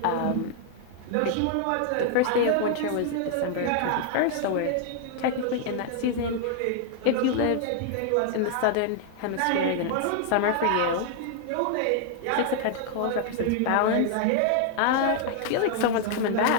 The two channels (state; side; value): different; both; correlation 0.00